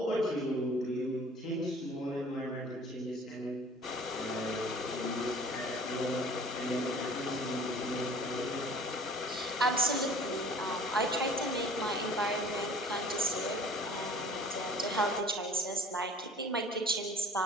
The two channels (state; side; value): normal; both; correlation 0.48